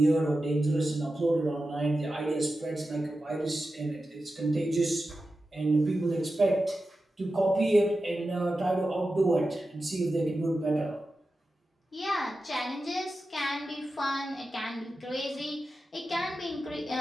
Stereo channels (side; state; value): both; normal; correlation 0.92